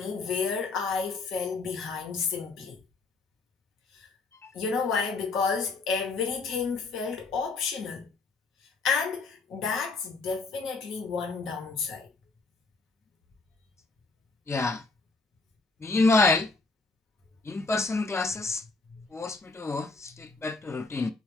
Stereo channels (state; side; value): quieter; right; 3.9 dB